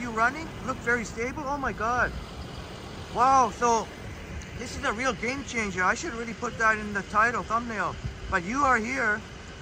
running. Looked very stable. Oh my god. Wow, so this is a real game changer. I should really put that in the title, thumbnail. But you are here.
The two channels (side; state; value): both; identical; correlation 1.00